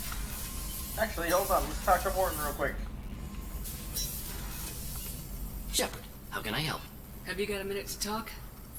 Actually, hold on. Let's talk to Morton real quick. Shepard, how can I help? Have you got a minute to talk?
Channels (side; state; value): both; identical; correlation 1.00